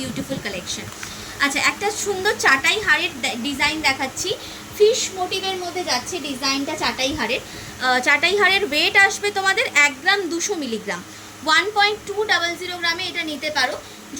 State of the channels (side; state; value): both; identical; correlation 1.00